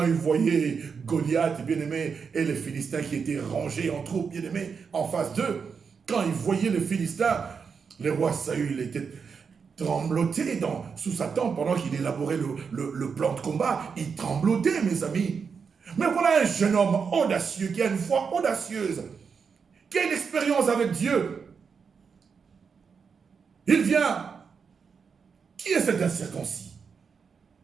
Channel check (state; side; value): quieter; left; 5.9 dB